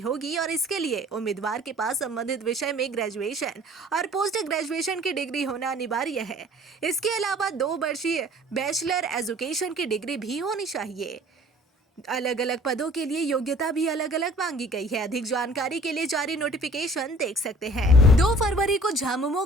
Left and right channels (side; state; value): both; normal; correlation 0.52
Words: और इसके लिए उम्मीदवार के पास संबंधित विषय में ग्रेजुएशन और पोस्ट ग्रेजुएशन की डिग्री होना अनिवार्य है। इसके अलावा 2 वर्षीय बैचलर एजुकेशन की डिग्री भी होनी चाहिए। अलग अलग पदों के लिए योग्यता भी अलग अलग मांगी गई है। अधिक जानकारी के लिए जारी नोटिफिकेशन देख सकते हैं। 2 फरवरी को झामुमो